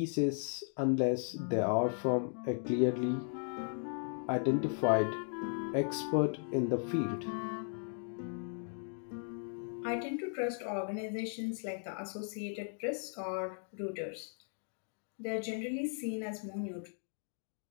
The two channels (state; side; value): silent; right; 53 dB below the other